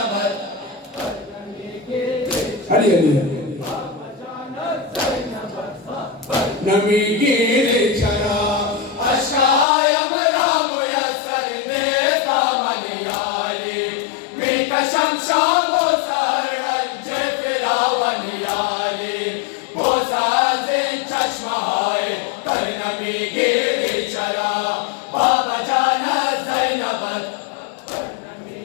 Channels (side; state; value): right; drops out; at 9.7 s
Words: अली अली नमी गिरे चला अशायम राम मुयस्सर ने दामनियाली मी कसम शामो सरंजे फिरावनियाली वो साजे चश्माए कर नमी गिरे चला बाबा जाना ज़ैनब